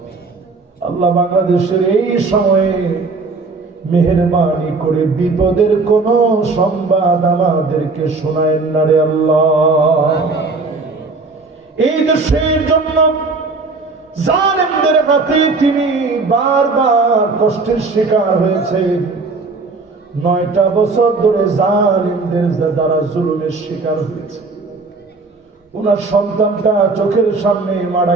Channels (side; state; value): left; quieter; 3.9 dB